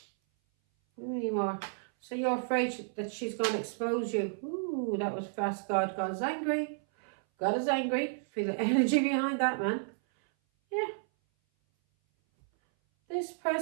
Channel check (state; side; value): silent; left; 57 dB below the other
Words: Any more? So you're afraid that she's going to expose you. Ooh, that was fast, God. God is angry. God is angry. Feel the energy behind that, man. Yeah. This